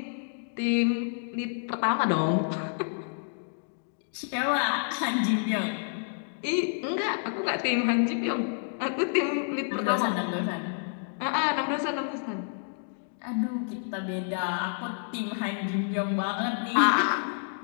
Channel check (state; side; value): silent; right; digital silence